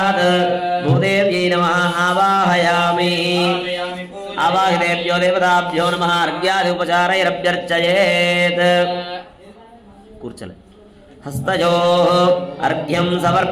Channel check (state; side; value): identical; both; correlation 1.00